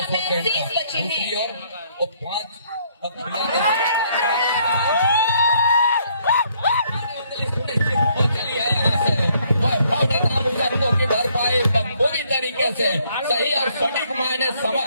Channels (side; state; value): both; inverted; correlation -0.67